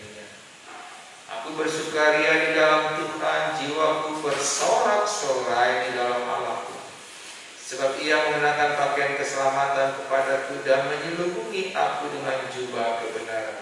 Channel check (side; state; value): both; identical; correlation 1.00